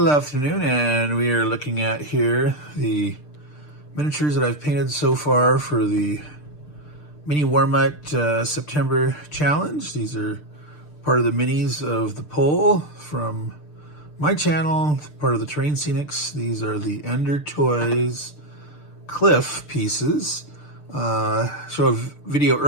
afternoon and we are looking at here the miniatures that I've painted so far for the Mini Warmut September challenge. These are part of the minis of the poll from my channel, part of the Terrain Scenics. These are the Ender Toys Cliff pieces. Show a video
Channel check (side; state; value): right; late; 6.7 ms